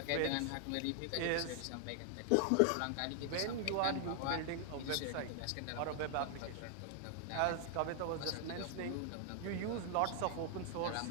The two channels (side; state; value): both; different; correlation 0.00